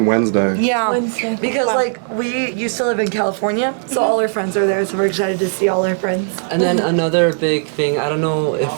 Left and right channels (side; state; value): left; silent; 68 dB below the other